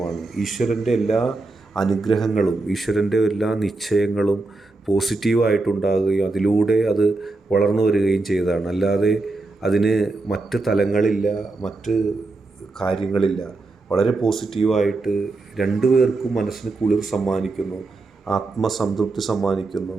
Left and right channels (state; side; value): quieter; left; 3.4 dB